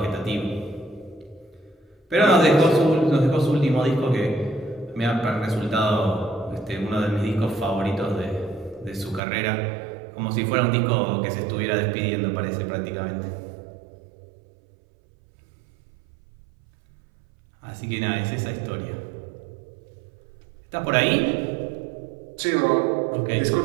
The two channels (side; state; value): left; drops out; at 9.2 s